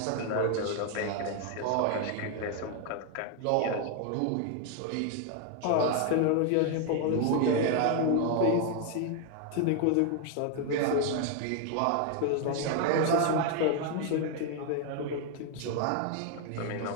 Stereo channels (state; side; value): different; both; correlation 0.01